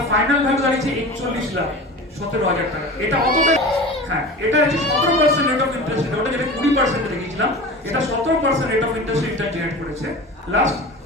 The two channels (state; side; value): normal; both; correlation 0.34